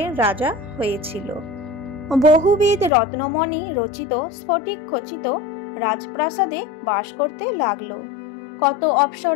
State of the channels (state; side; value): drops out; right; at 2.9 s